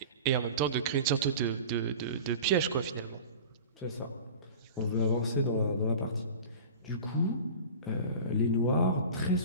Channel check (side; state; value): both; inverted; correlation -0.37